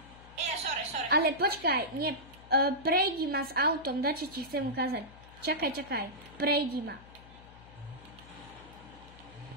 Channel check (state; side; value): noise; left; hum, 21 dB below the sound